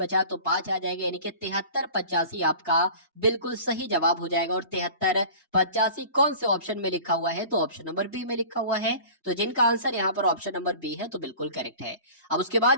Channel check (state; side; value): inverted; both; correlation -0.42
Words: तो 5 आ जाएगा, यानी कि 7385 आपका बिल्कुल सही जवाब हो जाएगा। और 7385 कौन से ऑप्शन में लिखा हुआ है, तो ऑप्शन नंबर बी में लिखा हुआ है। तो जिनका आंसर यहाँ पर ऑप्शन नंबर बी है तो बिल्कुल करेक्ट है। अब उसके